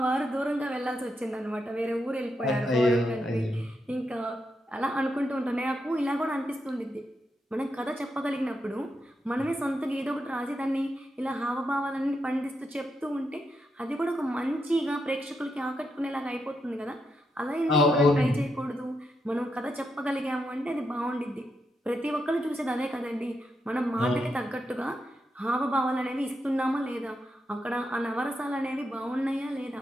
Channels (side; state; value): both; normal; correlation 0.83